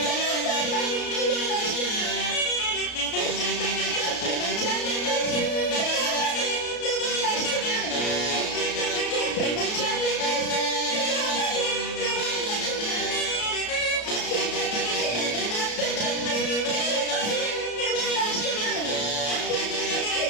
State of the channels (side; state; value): right; late; 33 ms